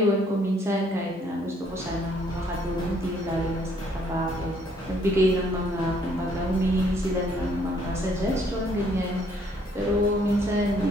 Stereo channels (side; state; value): both; normal; correlation 0.65